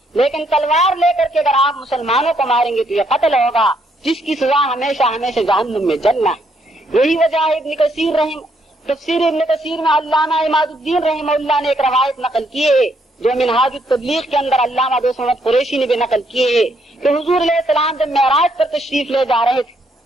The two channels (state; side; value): normal; both; correlation 0.73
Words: لیکن تلوار لے کر کے اگر آپ مسلمانوں کو ماریں گے تو یہ قتل ہوگا، جس کی سزا ہمیشہ ہمیشہ جہنم میں جلنا ہے. یہی وجہ ہے ابن کثیر تفسیر ابن کثیر میں علامہ عماد الدین رحمہ اللہ نے ایک روایت نقل کی ہے جو منہاج التبلیغ کے اندر علامہ دوست محمد قریشی نے بھی نقل کی ہے کہ حضور علیہ السلام جب معراج پر تشریف لے جا رہے تھے